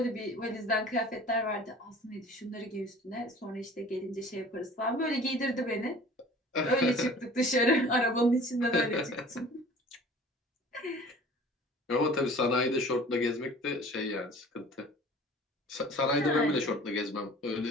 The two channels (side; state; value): both; normal; correlation 0.46